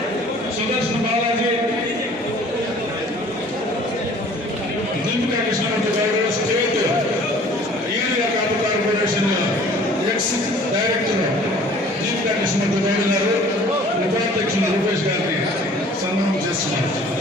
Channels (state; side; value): normal; both; correlation 0.51